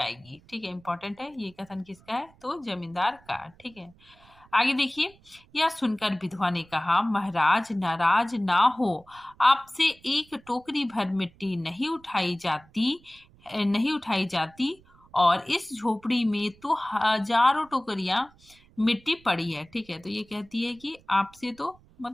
ठीक है। इंपॉर्टेंट है, ये कथन किसका है, तो जमींदार का, ठीक है। आगे देखिए, यह सुनकर विधवा ने कहा, महाराज नाराज ना हो, आपसे एक टोकरी भर मिट्टी नहीं उठाई जाती और इस झोपड़ी में तो हजारों टोकरियां मिट्टी पड़ी है, ठीक है। तो ये कहती है कि आपसे तो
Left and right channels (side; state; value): right; noise; rumble, 28 dB below the sound